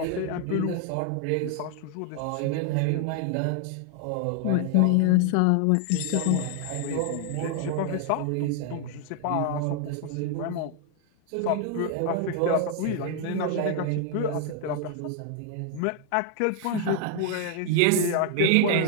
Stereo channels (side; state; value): both; different; correlation 0.00